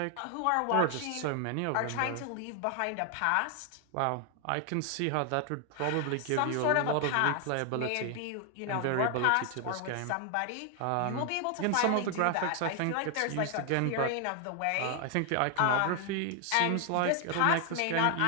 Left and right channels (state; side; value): different; both; correlation 0.00